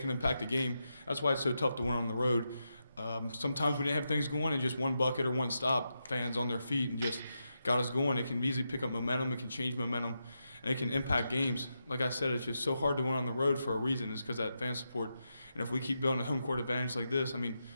impact the game. That's why it's so tough to win on the road. Sometimes we didn't have things going, and just one bucket or one stop, fans on their feet and just got us going. It can easily pick up momentum. It can change momentum, and it can impact games. Like I said, it's just so hard to win on the road for a reason. It's because that fan support. And if we keep building a home court advantage like this, I mean,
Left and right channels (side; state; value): both; inverted; correlation -0.86